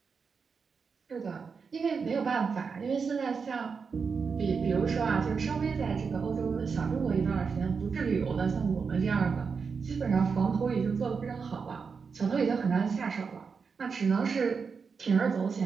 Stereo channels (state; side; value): quieter; left; 5.5 dB